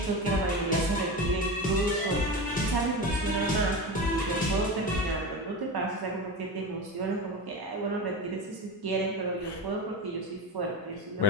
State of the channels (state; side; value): normal; both; correlation 0.24